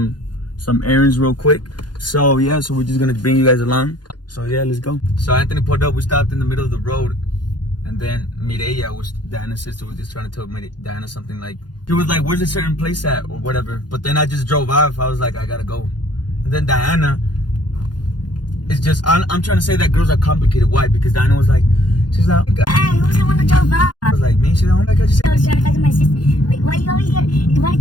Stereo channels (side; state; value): right; late; 0.70 ms